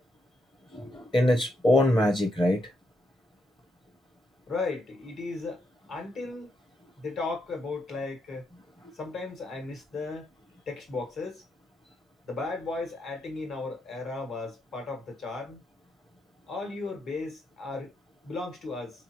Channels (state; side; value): normal; both; correlation 0.81